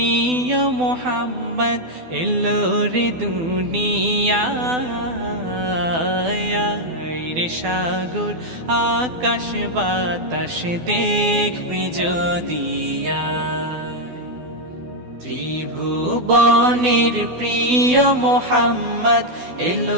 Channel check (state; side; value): late; left; 12 ms